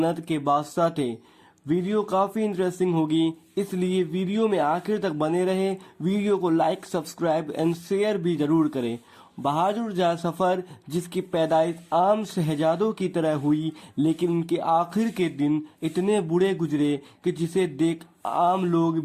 کے بادشاہ تھے۔ ویڈیو کافی انٹرسٹنگ ہوگی، اس لیے ویڈیو میں آخر تک بنے رہے۔ ویڈیو کو لائک، سبسکرائب اینڈ شیئر بھی ضرور کریں۔ بہادر شاہ ظفر جس کی پیدائش عام شہزادوں کی طرح ہوئی، لیکن ان کے آخر کے دن اتنے برے گزرے کہ جسے دیکھ عام لوگ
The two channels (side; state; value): both; identical; correlation 1.00